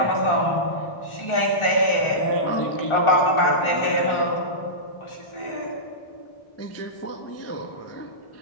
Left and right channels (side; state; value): right; late; 1.4 ms